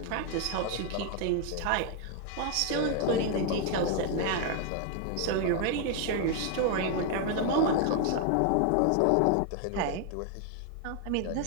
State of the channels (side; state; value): both; different; correlation 0.00